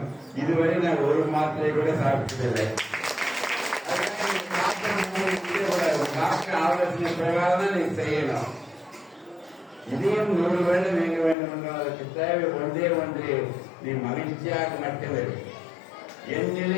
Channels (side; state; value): right; drops out; at 11.4 s